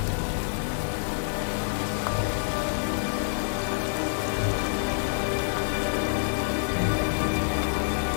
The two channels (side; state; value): right; silent; digital silence